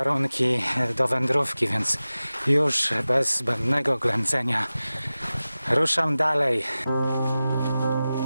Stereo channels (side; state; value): both; inverted; correlation -0.96